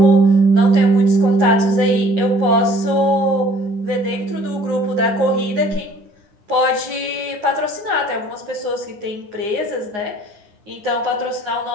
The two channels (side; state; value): left; late; 9.6 ms